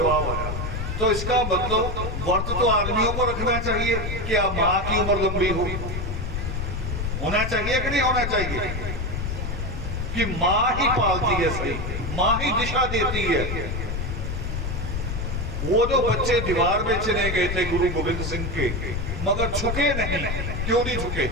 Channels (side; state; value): left; noise; rumble, 3 dB below the sound